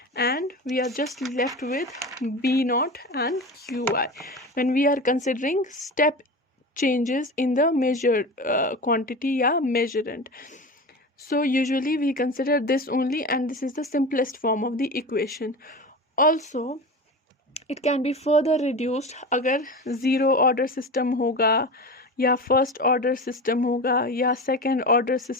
and we are just left with b naught and qi when we are considering step changes in the measured quantity या measurand. So usually we consider this only, and this is the simplest form of the equation. Also it can be further reduced अगर zero order system होगा या first order system होगा या second order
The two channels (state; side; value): normal; both; correlation 0.28